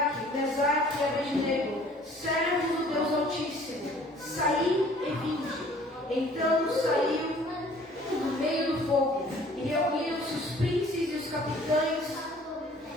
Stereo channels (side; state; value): both; normal; correlation 0.53